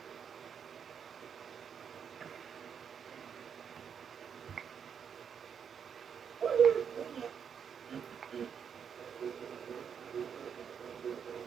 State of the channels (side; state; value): left; quieter; 7.4 dB